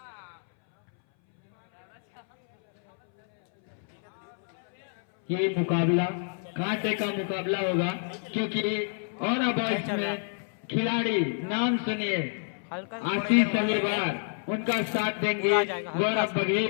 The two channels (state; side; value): silent; right; 59 dB below the other